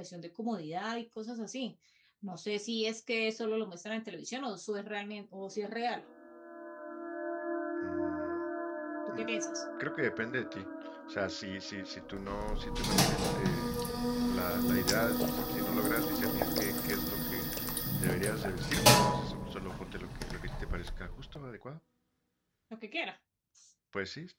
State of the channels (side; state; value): both; identical; correlation 1.00